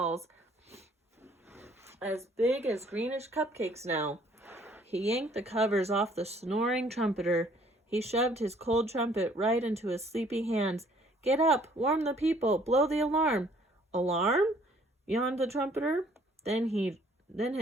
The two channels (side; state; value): both; normal; correlation 0.60